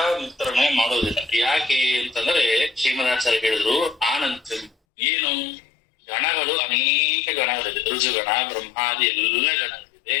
ಮುಕ್ತರನ್ನ ಮಾಡೋದಿಲ್ಲ. ಯಾಕೆ ಅಂತಂದ್ರೆ ಶ್ರೀಮದಾಚಾರ್ಯ ಹೇಳಿದ್ರು ಆನಂತ ಏನು ಗಣಗಳು ಅನೇಕ ಗಣಗಳಿದೆ, ರುಜುಗಣ, ಬ್ರಹ್ಮಾದಿ ಎಲ್ಲ ಗಣಗಳಿದೆ.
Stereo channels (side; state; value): right; drops out; at 4.7 s